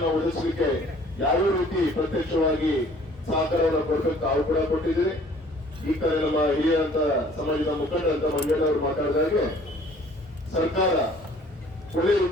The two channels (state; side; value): normal; both; correlation 0.54